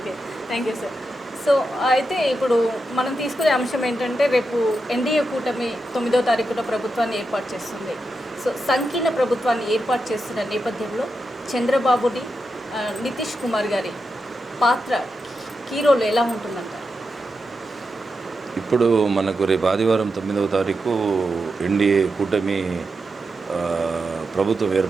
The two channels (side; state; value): both; normal; correlation 0.87